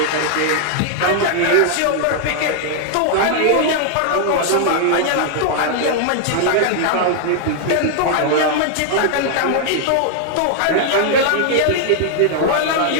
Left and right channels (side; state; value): both; different; correlation -0.01